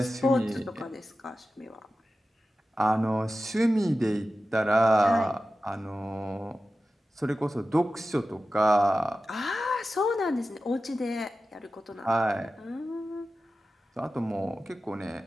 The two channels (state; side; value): normal; both; correlation 0.94